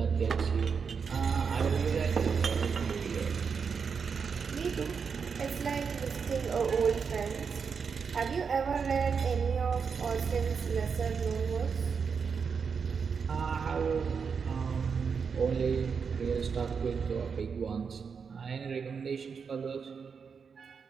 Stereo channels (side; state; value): left; quieter; 6.0 dB